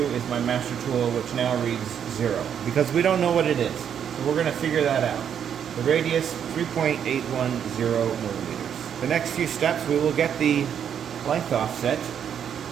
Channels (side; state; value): left; quieter; 8.5 dB